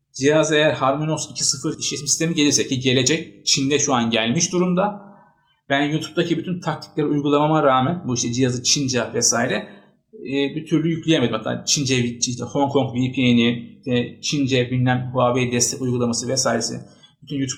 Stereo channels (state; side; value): identical; both; correlation 1.00